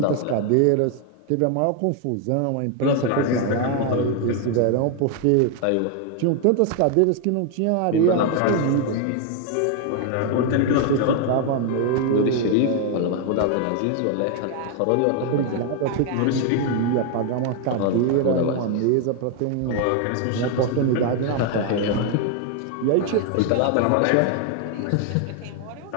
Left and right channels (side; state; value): both; different; correlation 0.00